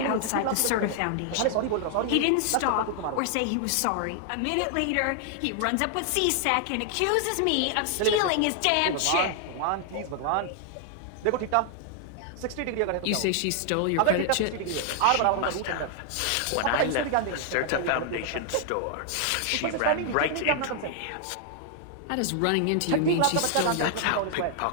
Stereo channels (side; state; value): both; different; correlation 0.00